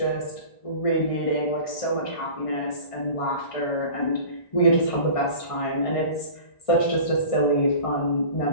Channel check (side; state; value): right; late; 1.6 ms